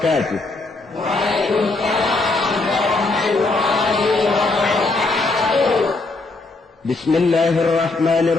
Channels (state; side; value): quieter; right; 3.3 dB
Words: Waalaikumsalam warahmatullahi wabarakatuh.